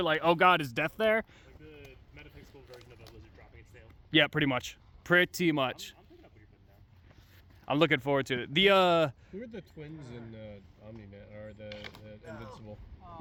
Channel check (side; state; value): both; identical; correlation 1.00